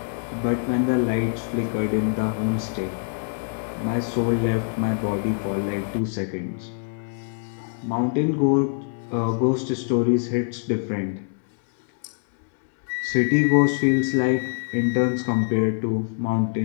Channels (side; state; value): right; silent; 62 dB below the other